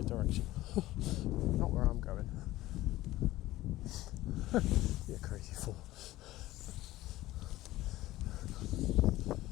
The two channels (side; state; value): right; quieter; 16.6 dB